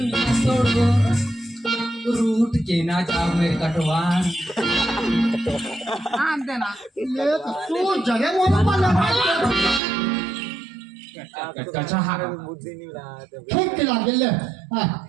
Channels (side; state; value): left; drops out; at 9.8 s